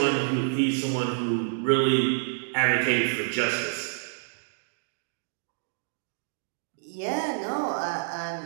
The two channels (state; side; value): silent; left; digital silence